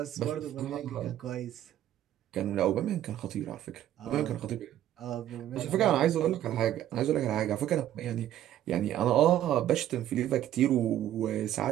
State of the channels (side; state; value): left; quieter; 12.1 dB